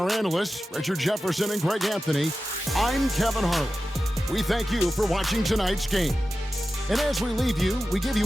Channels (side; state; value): both; normal; correlation 0.93